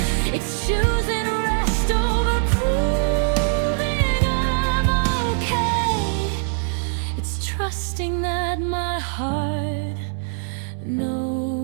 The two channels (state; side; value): silent; left; digital silence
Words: It's choosing rest over proving I'm okay. It's trusting that my heart